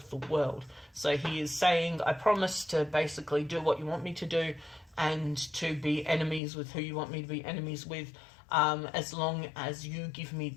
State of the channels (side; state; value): right; drops out; at 6.4 s